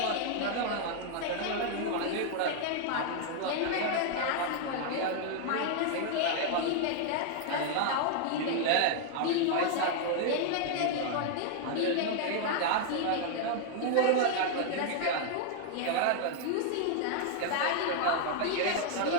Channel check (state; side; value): different; both; correlation 0.00